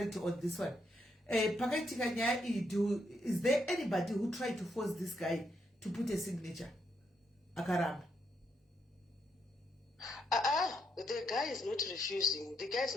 on this one. Pakaitika nyaya iyi, is there anybody who tried to force this guy to put a signature? Akaramba. The guy is not refusing. The guy is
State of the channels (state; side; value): normal; both; correlation 0.78